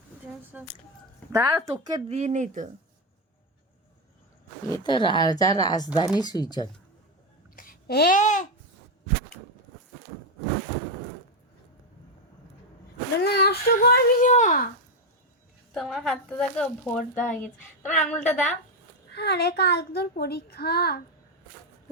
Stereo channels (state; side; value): normal; both; correlation 0.07